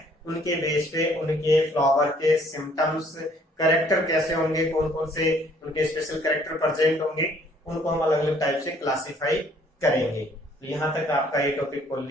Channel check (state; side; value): normal; both; correlation 0.61